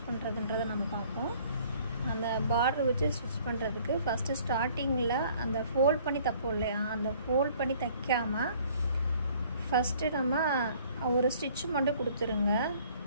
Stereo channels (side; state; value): both; inverted; correlation -0.57